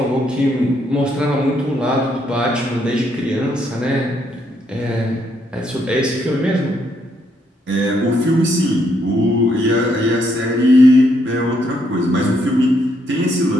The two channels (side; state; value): both; normal; correlation 0.74